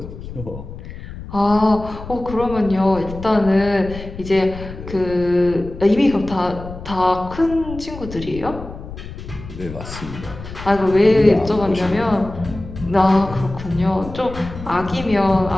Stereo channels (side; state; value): left; noise; rumble, 12 dB below the sound